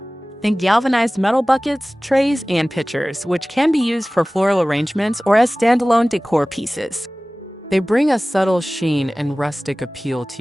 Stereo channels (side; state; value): both; normal; correlation 0.98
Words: Think galvanized metal buckets, trays, and pitchers, which can be used for floral arrangements or as standalone decor pieces. They bring a subtle sheen and rustic appeal to